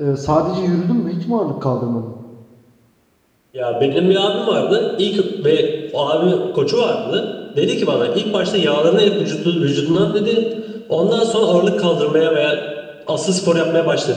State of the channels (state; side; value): identical; both; correlation 1.00